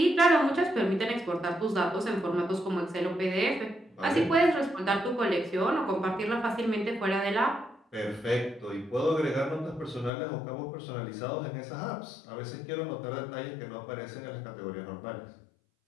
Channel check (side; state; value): right; drops out; at 10.1 s